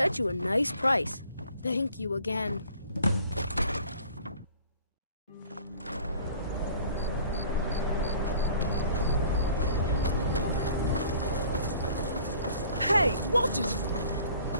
you a nice price. Thank you again. Hey, watch it!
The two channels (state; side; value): inverted; both; correlation -0.52